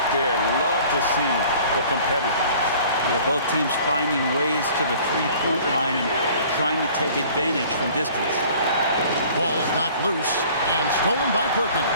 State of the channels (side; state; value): both; inverted; correlation -0.50